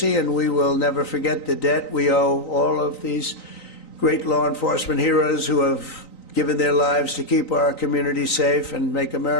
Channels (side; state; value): right; late; 3.9 ms